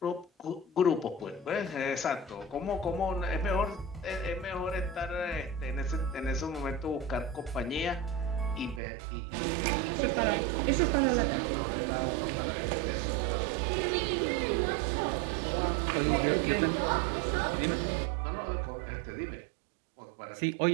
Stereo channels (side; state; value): left; drops out; at 8.8 s